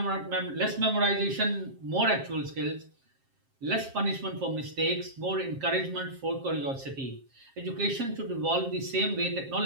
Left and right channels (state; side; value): late; left; 7.5 ms